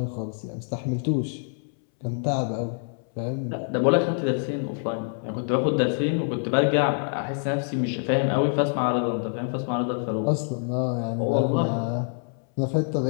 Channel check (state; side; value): silent; right; 61 dB below the other